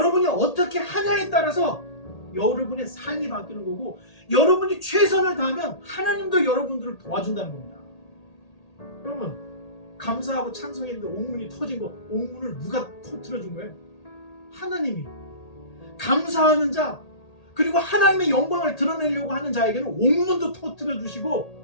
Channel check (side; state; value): right; late; 1.8 ms